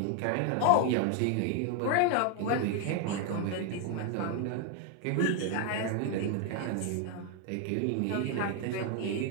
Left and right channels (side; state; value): both; different; correlation 0.00